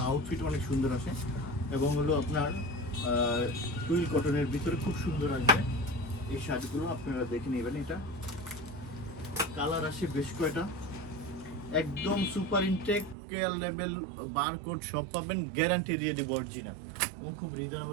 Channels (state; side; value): drops out; left; at 13.2 s